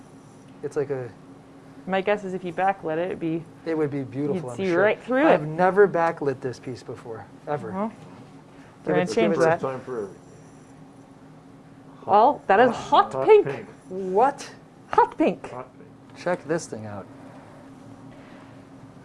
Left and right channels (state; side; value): identical; both; correlation 1.00